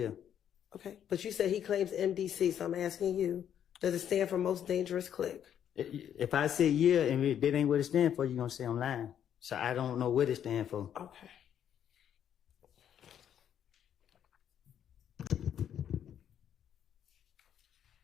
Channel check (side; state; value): right; quieter; 9.5 dB